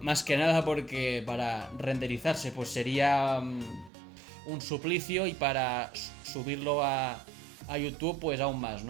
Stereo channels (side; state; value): left; drops out; at 3.9 s